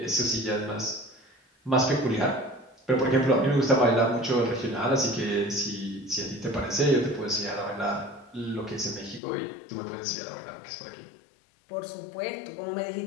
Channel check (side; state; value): right; drops out; at 9.2 s